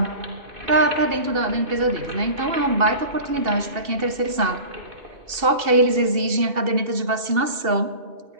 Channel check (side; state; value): left; late; 2.7 ms